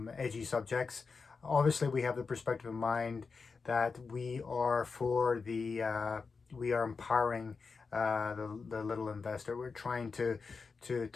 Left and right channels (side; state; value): right; quieter; 4.8 dB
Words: edgy subjects. Obviously, we have the perspective in mind that we are empowering the little investor. We're trying to